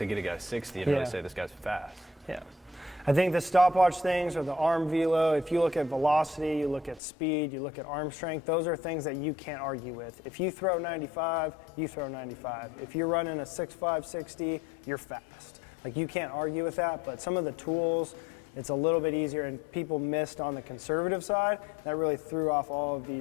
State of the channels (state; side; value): drops out; right; at 7.0 s